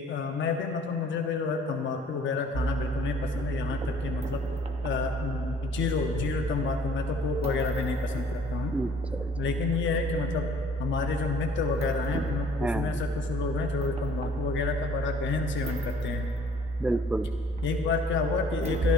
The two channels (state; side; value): normal; both; correlation 0.56